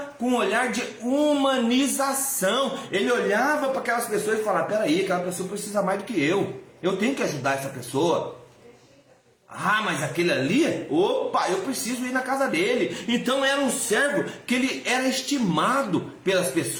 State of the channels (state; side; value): identical; both; correlation 1.00